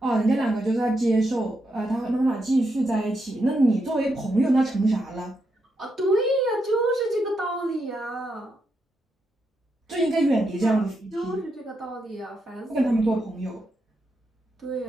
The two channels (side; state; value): both; normal; correlation 0.82